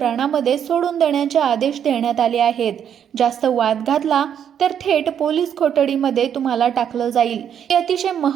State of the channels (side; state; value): left; quieter; 8.8 dB